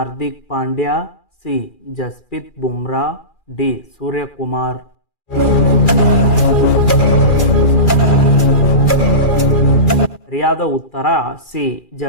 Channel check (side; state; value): right; late; 2.4 ms